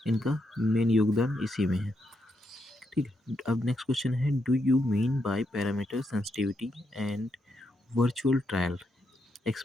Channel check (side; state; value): both; normal; correlation 0.81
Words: इनका मेन योगदान इसी में है। ठीक है, अब नेक्स्ट क्वेश्चन है, do you mean by parameter sensitivity and virtual trial?